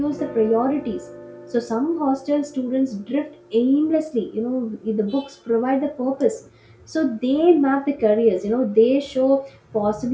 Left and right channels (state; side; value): identical; both; correlation 1.00